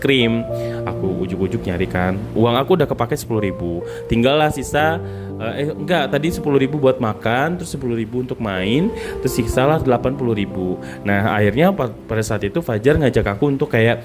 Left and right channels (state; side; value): identical; both; correlation 1.00